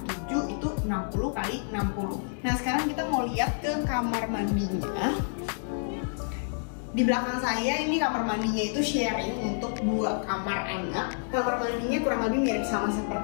7 itu 60x60. Nah sekarang kita mau lihat ke kamar mandinya. Di belakang saya ini kamar mandinya itu sharing untuk 2 kamar anak. Kamar mandinya kurang lebih mirip sama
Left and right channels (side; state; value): right; silent; digital silence